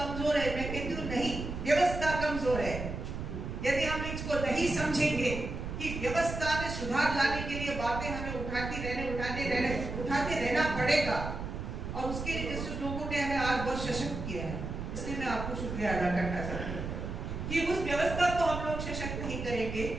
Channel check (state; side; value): noise; right; rumble, 6 dB below the sound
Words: है, मैं कहती हूँ नहीं, व्यवस्था कमजोर है। यदि हम इसको नहीं समझेंगे कि व्यवस्था में सुधार लाने के लिए बातें हमें उठाते रहना पड़ेगा, और उसके लिए जिस लोगों ने हमें आज बहुत सशक्त किया है, इसलिए मैं आपको शुक्रिया अदा करना चाहती हूँ कि उस व्यवस्था को हम लोग सशक्त नहीं करेंगे